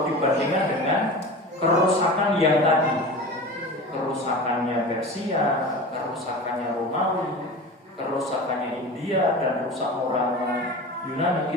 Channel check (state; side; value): normal; both; correlation 0.32